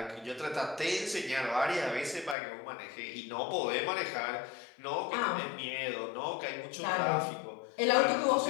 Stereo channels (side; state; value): right; drops out; at 2.4 s